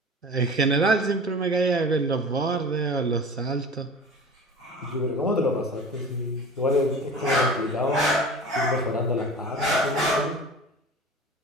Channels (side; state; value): both; normal; correlation 0.37